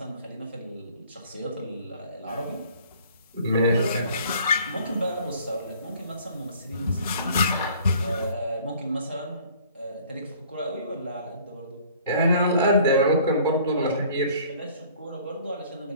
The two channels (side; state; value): both; inverted; correlation -0.53